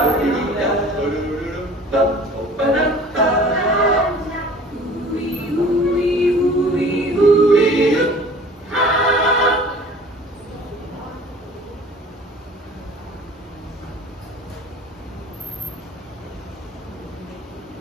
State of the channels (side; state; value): both; normal; correlation 0.46